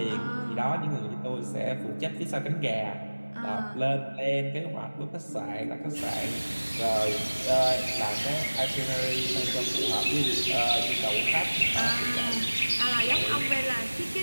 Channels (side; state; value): both; inverted; correlation -1.00